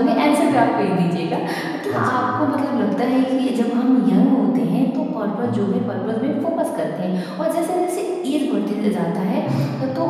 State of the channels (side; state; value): both; identical; correlation 1.00